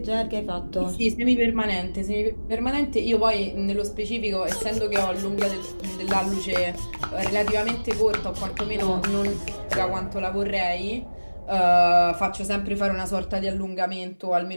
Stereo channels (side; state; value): both; inverted; correlation -1.00